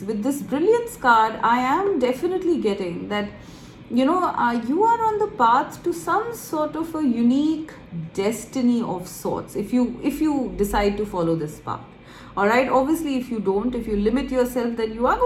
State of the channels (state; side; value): identical; both; correlation 1.00